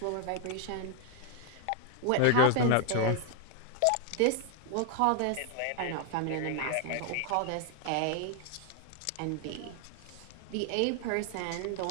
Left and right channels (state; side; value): different; both; correlation 0.00